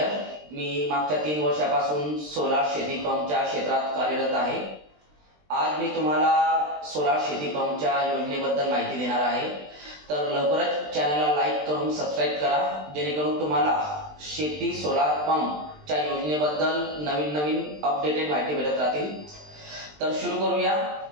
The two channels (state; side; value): late; left; 20 ms